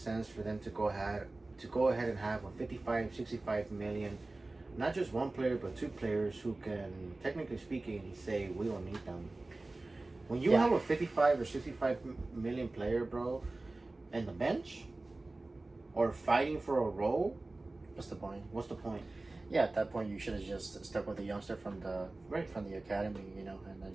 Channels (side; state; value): left; quieter; 3.0 dB